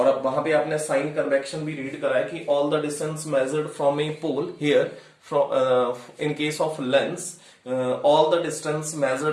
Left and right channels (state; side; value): identical; both; correlation 1.00